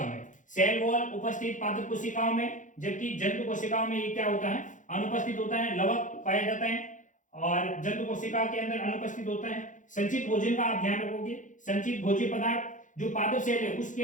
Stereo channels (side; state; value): right; late; 0.37 ms